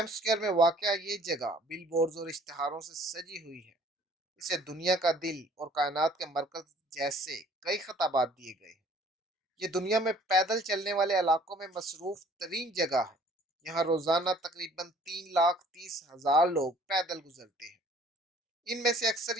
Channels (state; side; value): normal; both; correlation 0.55